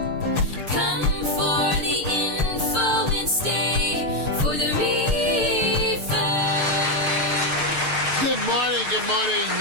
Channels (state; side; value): late; left; 6.5 ms